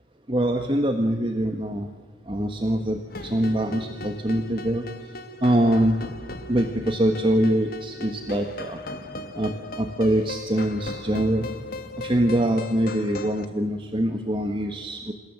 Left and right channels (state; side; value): normal; both; correlation 0.78